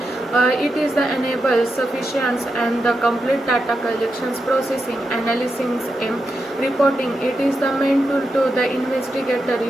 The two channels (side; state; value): both; normal; correlation 0.86